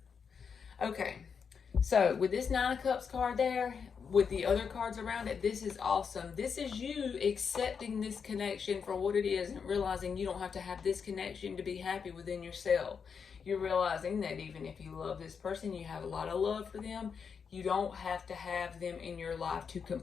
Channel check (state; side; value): quieter; right; 6.3 dB